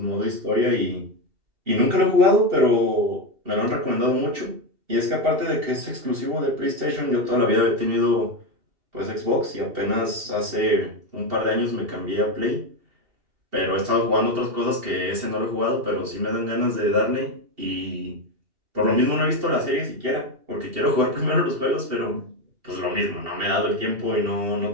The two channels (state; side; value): late; left; 2.7 ms